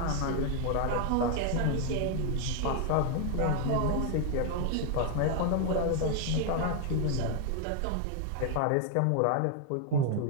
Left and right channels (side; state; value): both; different; correlation 0.00